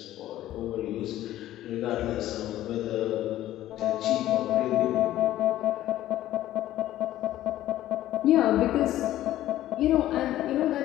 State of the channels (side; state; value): right; quieter; 13.9 dB